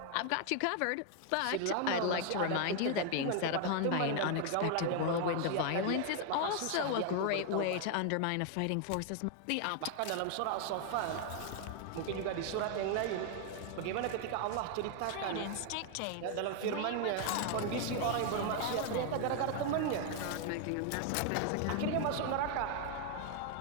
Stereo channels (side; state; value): both; different; correlation 0.00